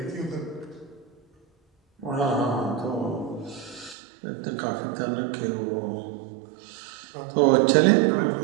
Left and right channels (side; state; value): left; drops out; at 4.0 s